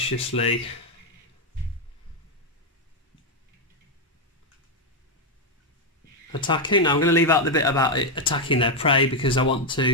attacking. Now I'm going to leave out the bit about it attacking their prey, because I want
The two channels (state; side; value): normal; both; correlation 0.03